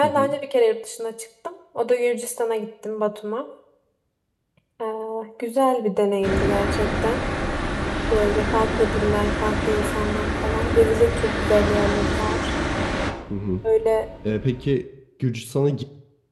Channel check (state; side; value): identical; both; correlation 1.00